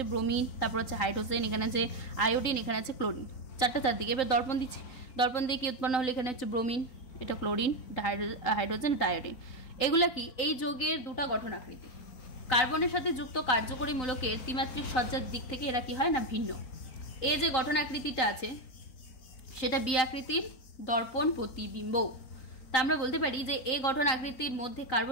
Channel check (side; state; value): right; late; 3.9 ms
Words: ব্রোমিন, তারপর হচ্ছে হাইড্রোজেন, এখানে আছে আয়োডিন, এখানে আছে ক্লোরিন, চারটা চারদিকে। এবার দর্পণ দিচ্ছি, দর্পণ দিয়ে কি উৎপন্ন হলো, এখানে হচ্ছে ব্রোমিন, এটা ক্লোরিন, এটা হাইড্রোজেন, এটা আয়োডিন। এগুলা কি এই যৌগের দুটা গঠন আকৃতি। কার্বনের সাথে যুক্ত কার্যকরী মূলকের ত্রিমাত্রিক সজ্জার দিক থেকে এরা কি হয় না ভিন্ন। এই যে গঠন আকৃতিটা আছে সেটা বি আকৃতির দর্পণ প্রতিবিম্ব। তা আমরা বলতে পারি যে এ গঠন আকৃতির মধ্যে